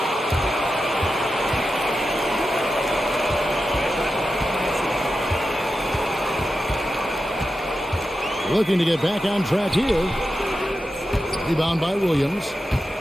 Looking to get back on track here. Rebound by Williams.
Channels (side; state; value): both; normal; correlation 0.90